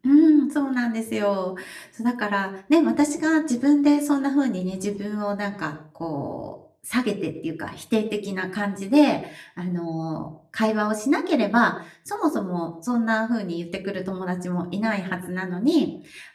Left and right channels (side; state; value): both; identical; correlation 1.00